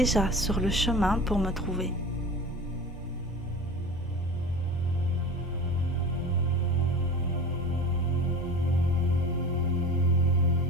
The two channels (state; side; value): normal; both; correlation 0.35